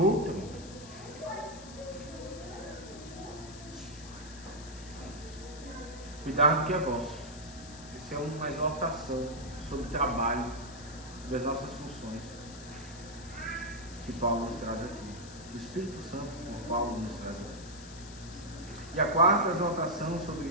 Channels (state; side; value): noise; left; hiss, 16 dB below the sound